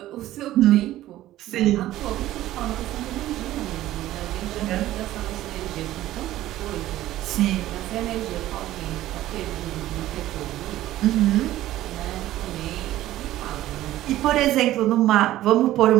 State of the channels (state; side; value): quieter; left; 14.6 dB